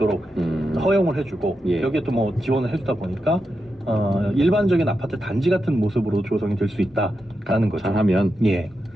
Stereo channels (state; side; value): normal; both; correlation 0.87